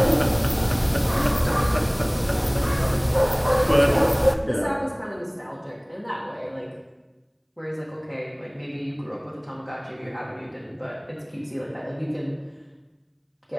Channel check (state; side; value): identical; both; correlation 1.00